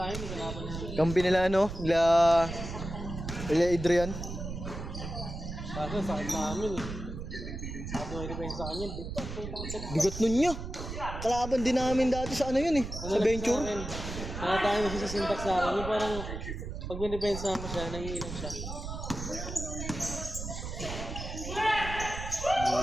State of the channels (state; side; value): noise; right; rumble, 7 dB below the sound